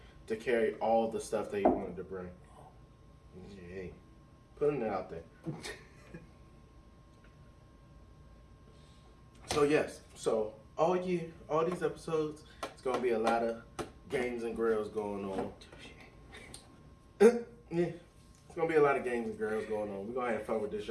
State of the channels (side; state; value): both; identical; correlation 1.00